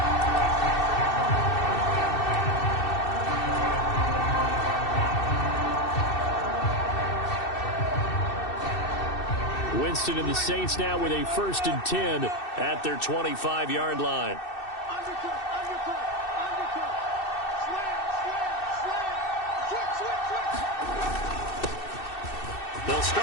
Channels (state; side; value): late; right; 2.6 ms